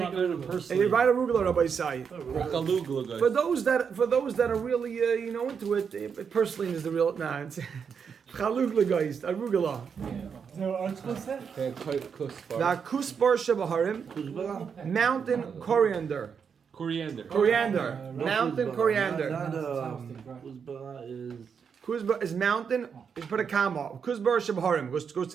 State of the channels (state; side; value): quieter; left; 6.6 dB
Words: better than And you personally. write arugula, Rabbi Sai. Chalugla guys. For those that are really into it, purslane is the real. Nah, it's chalugla guys, arugula. So article said. The kusbar shebaharim, mountain coriander. Coriander. Mountain coriander. Kuzbara is Kuzbar is mountain. Put a comma. Kuzbar shabharim goes